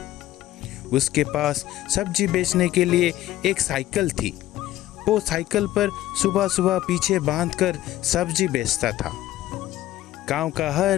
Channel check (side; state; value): right; quieter; 14.6 dB